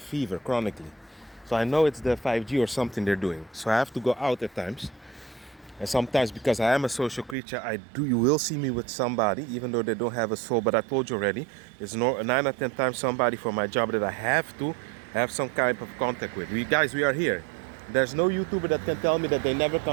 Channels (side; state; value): left; drops out; at 7.4 s